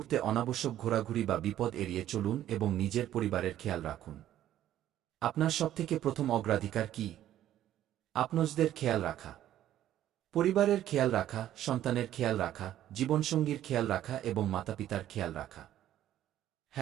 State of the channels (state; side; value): quieter; left; 12.2 dB